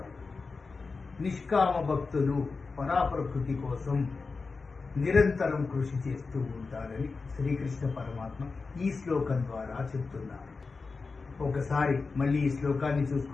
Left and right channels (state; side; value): quieter; right; 4.3 dB